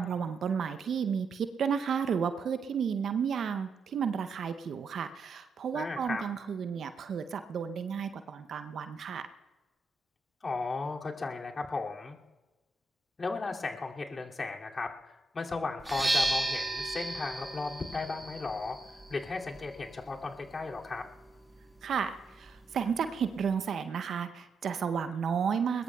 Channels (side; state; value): left; quieter; 3.2 dB